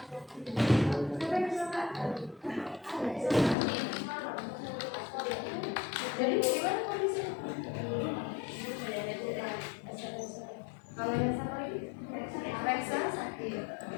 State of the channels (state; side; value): drops out; right; at 3.6 s